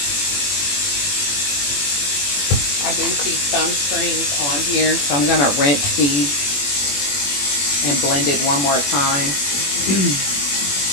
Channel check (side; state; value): right; late; 21 ms